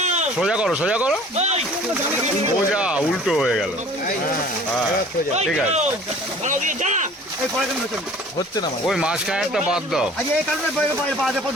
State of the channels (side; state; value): both; normal; correlation 0.48